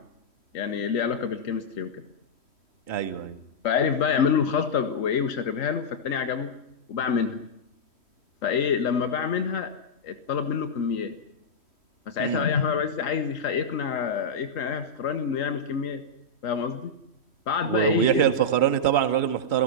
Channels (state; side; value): late; right; 3.1 ms